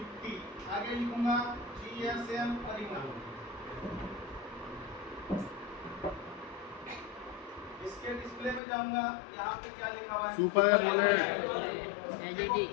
आगे लिखूंगा GSM अरीना। इसके डिस्प्ले में जाऊंगा, यहाँ पे क्या लिखा हुआ है? Super AMOLED. देखो,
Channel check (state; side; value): drops out; right; at 8.6 s